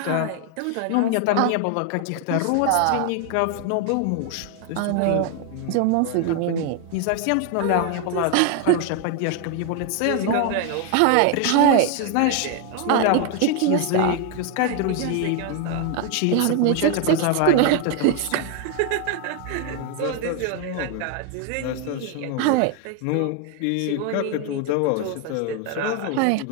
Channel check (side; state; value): both; different; correlation 0.01